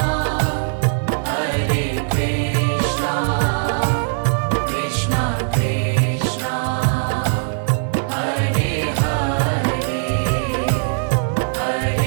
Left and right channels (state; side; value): silent; left; digital silence